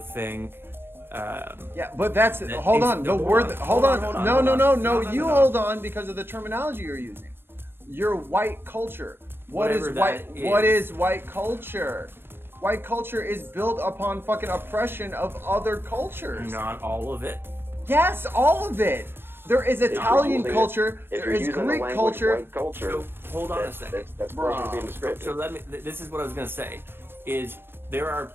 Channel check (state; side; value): late; left; 0.10 ms